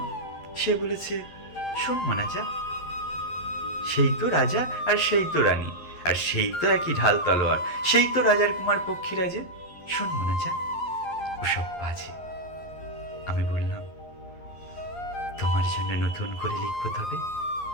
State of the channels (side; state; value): right; late; 11 ms